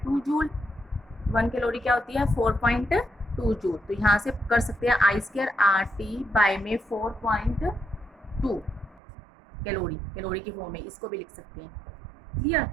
जूल। 1 कैलोरी क्या होती है, 4.2 जूल। तो यहाँ से कर सकते हैं I स्क्वायर RT बाय में 4.2 कैलोरी की फॉर्म में, इसको भी लिख सकते हैं। क्लियर।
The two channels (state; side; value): drops out; left; at 9.0 s